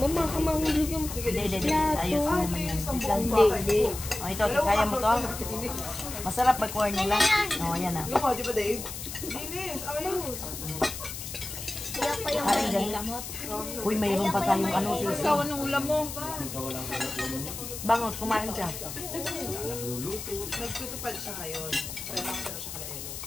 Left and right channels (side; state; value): left; noise; hiss, 8 dB below the sound